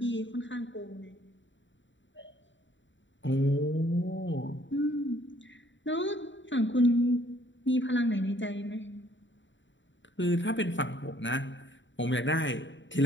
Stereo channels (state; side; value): late; right; 0.54 ms